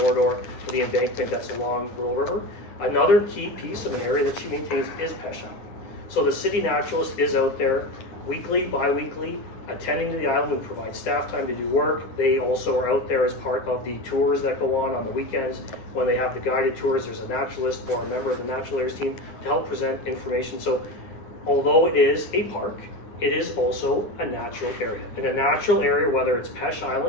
for the embankment that's along Little River. Another key piece of an area that she maintains is Peche Island. So the city naturalist is out there weekly, bi-weekly, attending to the island. We provide staff time to do work. They also are out there as part of the tours that go on the weekends. When they have the guided tours, there's a naturalist or a member of the natural areas team to help present information. So although it is a park, it is also a natural area. In a natural area, whether it's Peche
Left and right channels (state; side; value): late; right; 9.8 ms